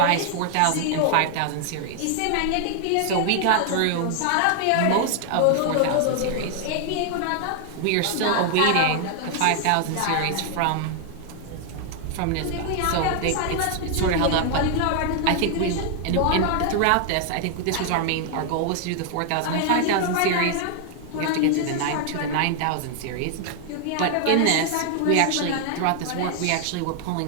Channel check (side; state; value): both; different; correlation 0.00